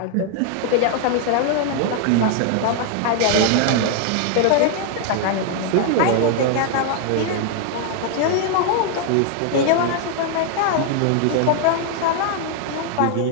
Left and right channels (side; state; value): both; different; correlation 0.00